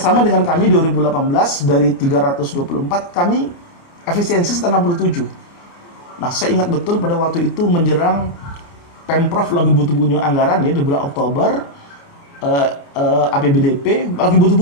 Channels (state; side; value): late; right; 29 ms